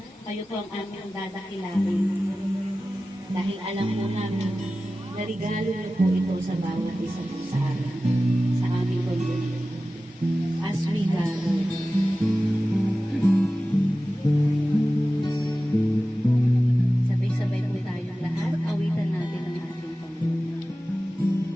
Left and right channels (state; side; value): normal; both; correlation 0.95